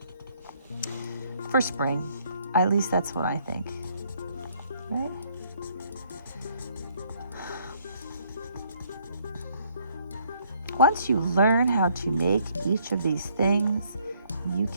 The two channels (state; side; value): inverted; both; correlation -0.65